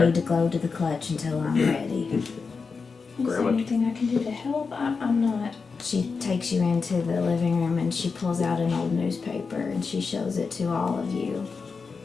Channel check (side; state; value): right; quieter; 4.9 dB